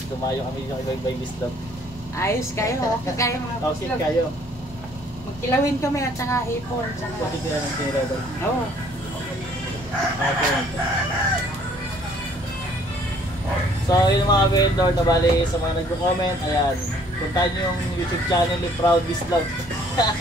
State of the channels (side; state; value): both; normal; correlation 0.60